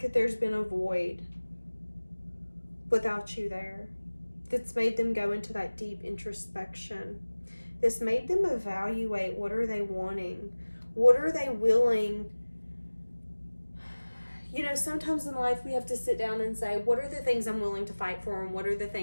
there's been a void without you there. That's made them go into that deep introspection. This made them evaluate, what are they wanting? What are they willing? You know, sometimes in life we have to sit down and say, what are the things I'm willing to fight for, and what are the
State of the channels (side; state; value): both; inverted; correlation -1.00